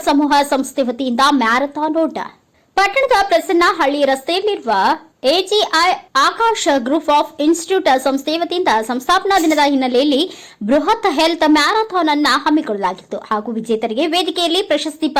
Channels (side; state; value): both; identical; correlation 1.00